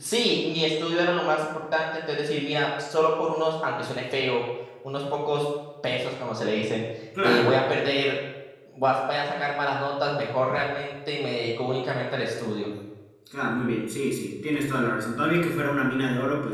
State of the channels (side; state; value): both; identical; correlation 1.00